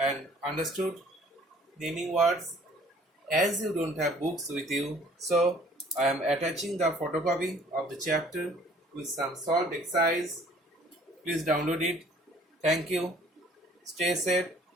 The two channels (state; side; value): normal; both; correlation 0.55